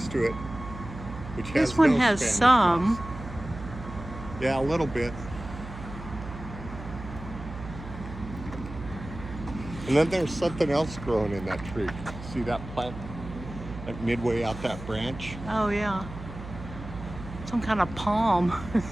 to it. Which has This one no has Spanish some. moss. Yeah, a little bit. And then there's something else growing in that tree. See that plant? Like midway out that branch? Oh, yeah. Some kind of palm,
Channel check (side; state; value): right; noise; hum, 12 dB below the sound